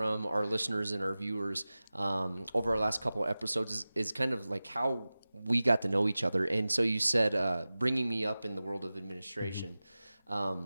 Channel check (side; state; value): both; inverted; correlation -0.97